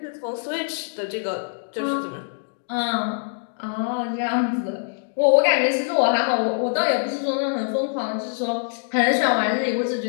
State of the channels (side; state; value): right; silent; digital silence